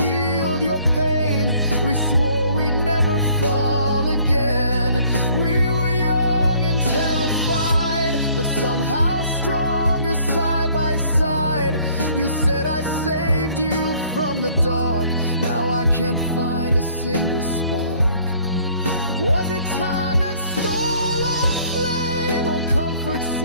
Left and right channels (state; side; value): inverted; both; correlation -0.59